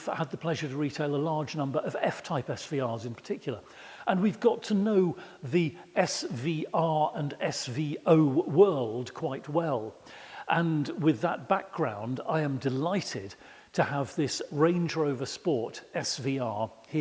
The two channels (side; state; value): both; identical; correlation 1.00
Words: had the pleasure to retail a large number of F-type SVRs in particular. And we've got to know the SVR and SVO world quite well. And with that background, I am delighted to have this Range Rover Sport SVR